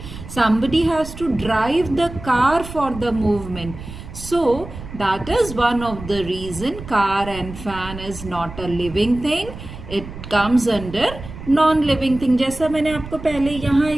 Somebody has to drive the car for the movement. So that is one of the reason car and fan is not a living thing. It comes under non-living thing. जैसा मैंने आपको पहले यहाँ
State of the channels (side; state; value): right; noise; rumble, 13 dB below the sound